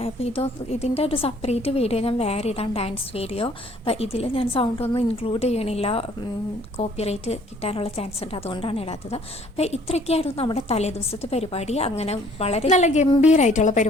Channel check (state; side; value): normal; both; correlation 0.59